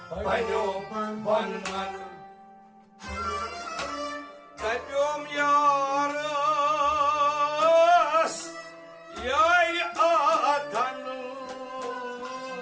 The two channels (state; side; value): identical; both; correlation 1.00